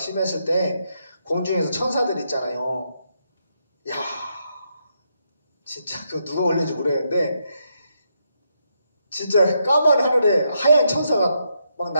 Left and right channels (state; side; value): inverted; both; correlation -0.80